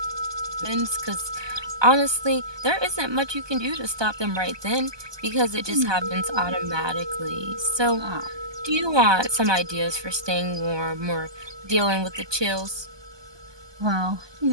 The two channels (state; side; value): late; left; 1.2 ms